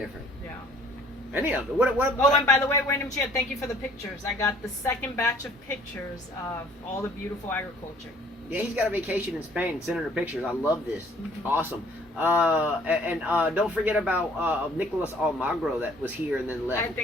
Yeah. Any of them. Oh, and by the way, Wayne Chia, thank you for the pictures. I got the second batch of pictures of all the beautiful agriculture. Yeah, he's got a vacation in Spain, sending her pictures. I love this. Mm-hmm. Awesome. And don't forget about Nicolas Almagro that was here and then left. I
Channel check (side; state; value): both; normal; correlation 0.57